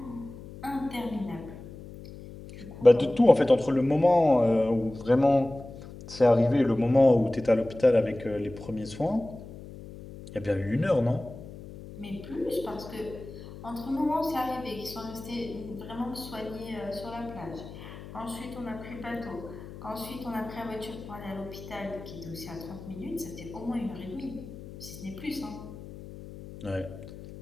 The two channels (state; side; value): noise; left; hum, 14 dB below the sound